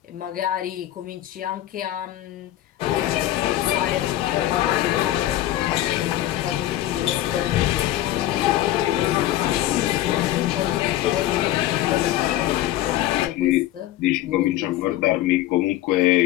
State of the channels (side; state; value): right; quieter; 14.2 dB